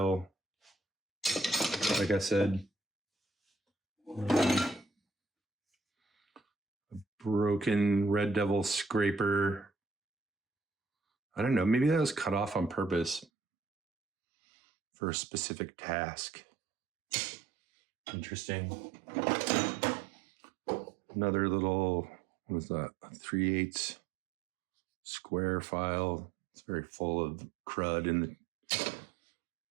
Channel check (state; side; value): drops out; left; at 13.2 s